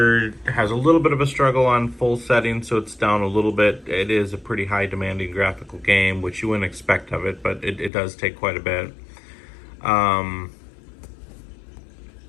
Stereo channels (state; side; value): drops out; right; at 7.9 s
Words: has a little bit of a struggle on full settings, so it's down a little bit. It is a pretty high demanding graphical game, which you wouldn't expect of it, but it does take quite a bit. All